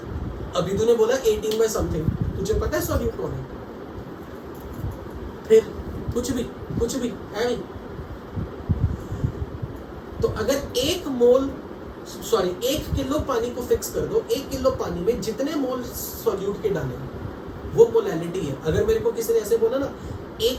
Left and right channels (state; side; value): identical; both; correlation 1.00